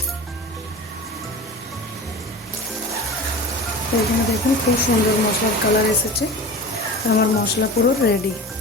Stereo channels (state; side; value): normal; both; correlation 0.34